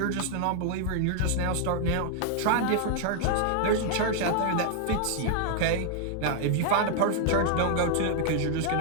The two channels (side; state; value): both; different; correlation 0.00